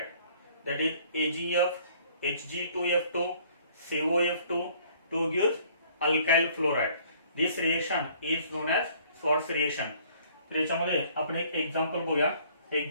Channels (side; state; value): both; inverted; correlation -0.58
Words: that is AgF, Hg2F2, COF2 to give alkyl fluoride. This reaction is known as Schwartz reaction. तर याच्यामध्ये आपण एक एक्झाम्पल बघूया.